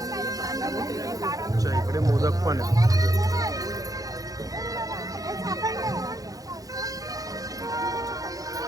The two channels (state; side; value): late; left; 0.17 ms